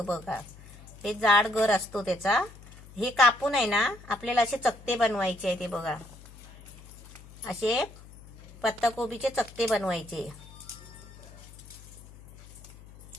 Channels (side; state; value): left; noise; hum, 19 dB below the sound